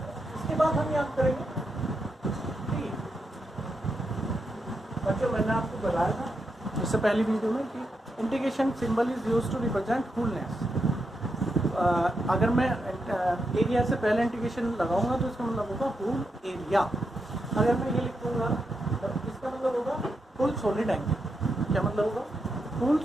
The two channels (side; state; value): both; normal; correlation 0.84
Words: इसके बाद हम याद करेंगे बच्चों, मैंने आपको बताया था इससे पहली वीडियो में कि integration symbol is used to represent wholeness. अगर मैं एरिया से पहले इंटीग्रेशन लगाऊंगा तो इसका मतलब होगा होल एरिया। अगर मैं ये लिखूंगा तो इसका मतलब होगा फुल सॉलिड एंगल। क्या मतलब होगा? Full